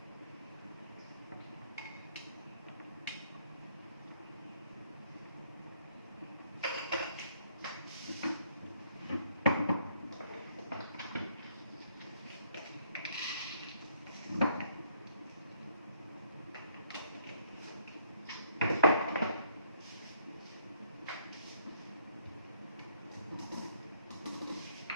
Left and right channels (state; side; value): inverted; both; correlation -0.67